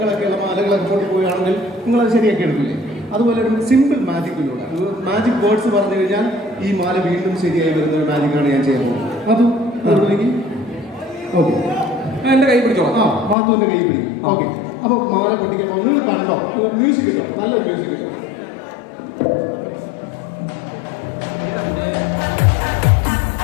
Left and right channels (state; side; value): drops out; right; at 13.4 s